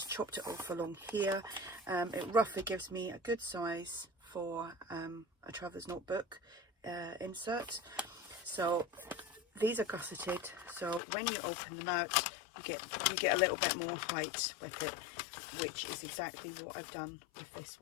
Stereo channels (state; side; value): drops out; right; at 11.0 s